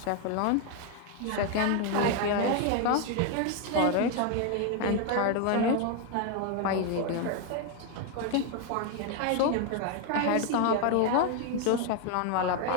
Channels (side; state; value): both; different; correlation 0.01